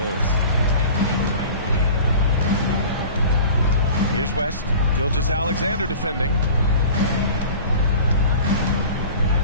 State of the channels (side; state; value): both; inverted; correlation -0.40